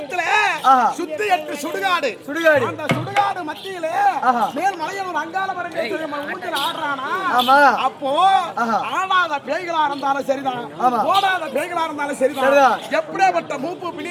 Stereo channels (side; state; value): both; identical; correlation 1.00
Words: ஆஹா. சுத்தி 8 சுடுகாடு. அந்த சுடுகாடு மத்தியில ஆஹா. மேல் மலையில் அங்காள ஊஞ்சல் ஆடுறானா? ஆமா. அப்போ ஆஹா. ஆடாத பேய்களா இருந்தாலும் சரிதான், ஆமா. ஓடாத பேய்களா இருந்தாலும் சரிதான், எப்படிப்பட்ட மூப்பு